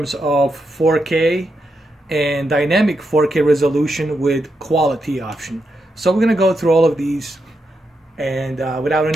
of 4K and dynamic 4K resolution with quality option. So we're going to go through all of these. And without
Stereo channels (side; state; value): both; normal; correlation 0.84